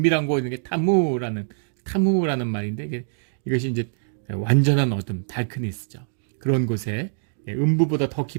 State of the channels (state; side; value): silent; left; digital silence